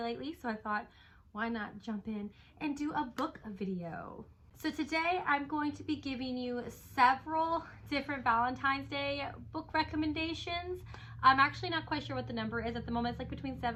so I thought, why not jump in and do a book video? So today I'm going to be giving you several different Valentine's Day book recommendations. I'm actually not quite sure what the number is at the moment. It's like between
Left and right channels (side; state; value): both; identical; correlation 1.00